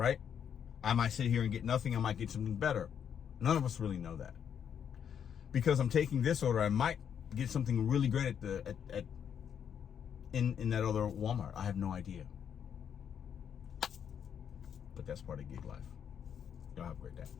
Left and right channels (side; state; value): right; quieter; 8.2 dB